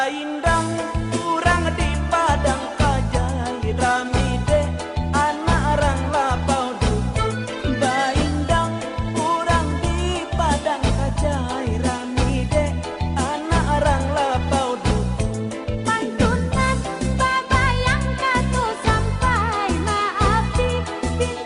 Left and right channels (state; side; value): identical; both; correlation 1.00